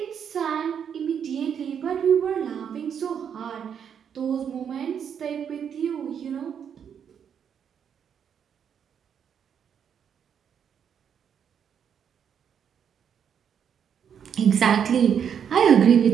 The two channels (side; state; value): left; quieter; 7.9 dB